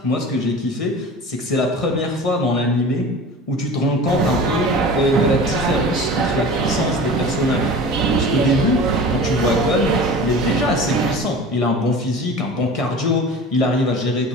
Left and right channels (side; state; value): both; normal; correlation 0.37